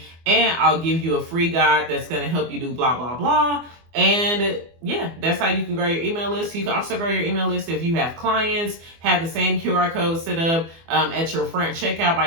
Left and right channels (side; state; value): left; late; 24 ms